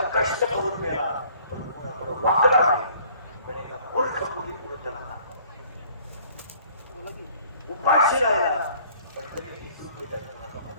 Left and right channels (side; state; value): both; inverted; correlation -0.56